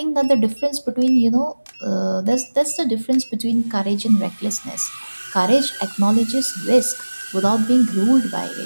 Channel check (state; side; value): inverted; both; correlation -1.00